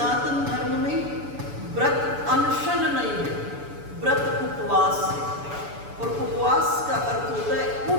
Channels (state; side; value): late; left; 6.9 ms